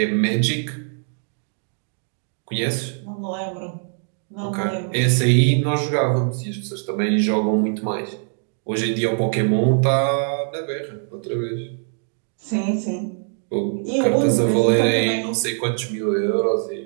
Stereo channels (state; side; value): silent; left; 58 dB below the other